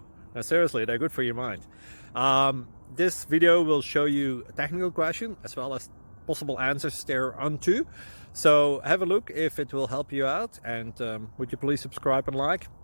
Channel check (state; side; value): inverted; both; correlation -1.00